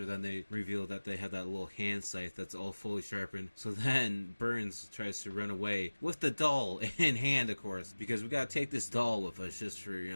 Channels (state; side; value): inverted; both; correlation -1.00